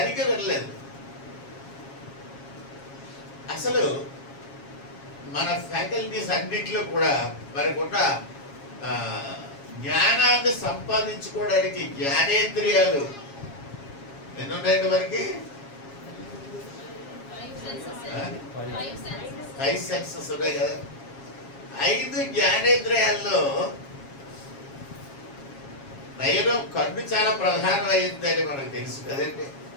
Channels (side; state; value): right; late; 7.3 ms